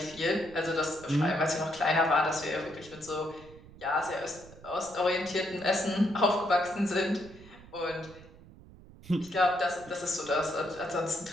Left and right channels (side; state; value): right; noise; rumble, 20 dB below the sound